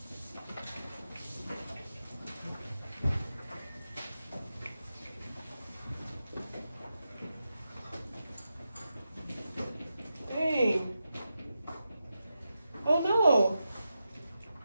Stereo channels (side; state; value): both; inverted; correlation -0.89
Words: Dang. Oh no.